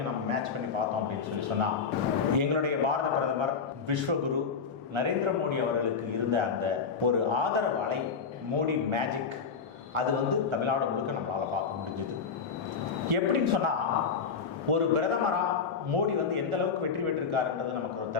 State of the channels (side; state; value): right; quieter; 5.8 dB